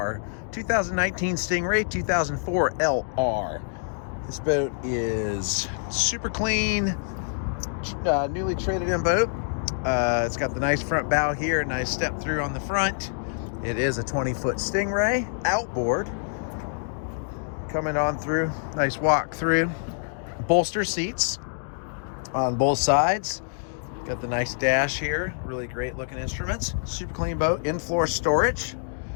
2019 Stingray 2004 LR. This boat is super clean, newly traded in boat. It's got the nice front bow here, nice step through on the front. It is a 20-foot Stingray outboard. Coming on through, nice walk through. Bolster seats on both sides. Got the nice dash here, really great looking instruments. Super clean boat, in-floor storage.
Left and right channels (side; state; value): right; silent; digital silence